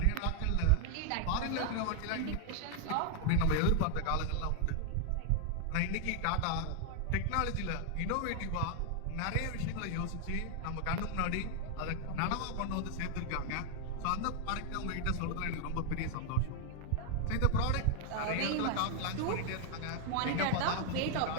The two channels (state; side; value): different; both; correlation 0.00